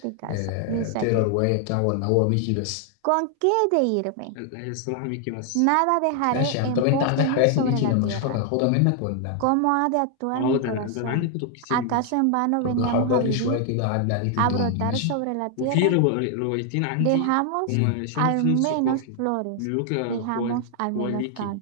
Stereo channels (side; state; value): both; different; correlation 0.00